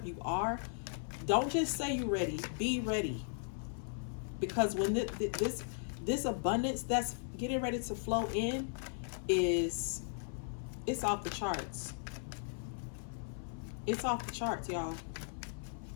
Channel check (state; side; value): silent; right; 53 dB below the other